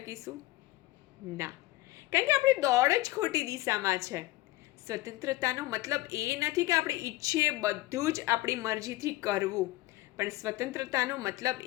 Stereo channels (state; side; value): quieter; right; 18.6 dB